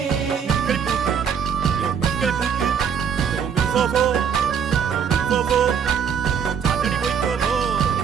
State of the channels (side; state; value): left; quieter; 7.4 dB